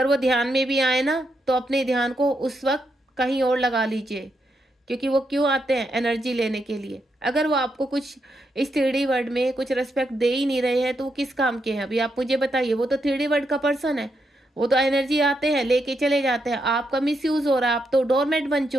वो ध्यान में भी आए ना, तो अपने ध्यान को उस वक्त कहीं और लगा लीजिए, क्योंकि वो क्यों आते हैं? एनर्जी लेने के लिए। अगर वो आपको कुछ इस 3D वर्ल्ड में कुछ रिस्पेक्ट दे ही नहीं रहे हैं, तो वो किस काम के हैं? अभी आप मुझे बताइए। वो तो 3D वर्ल्ड का पर्सन है, वो तो एनर्जी आते हैं, लेके चले जाते हैं। आपका मिसयूज हो रहा है, आप तो डोरमेट बन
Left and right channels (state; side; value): normal; both; correlation 0.81